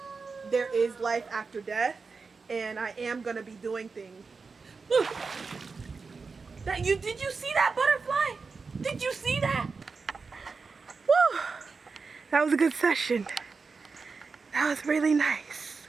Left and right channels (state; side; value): quieter; left; 4.6 dB